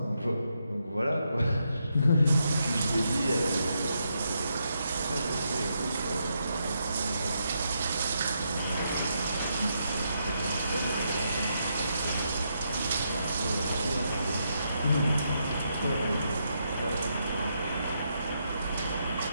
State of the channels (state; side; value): inverted; both; correlation -0.80